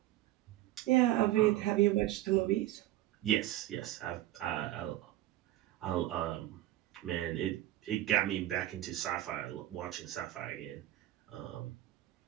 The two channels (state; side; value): quieter; left; 14.7 dB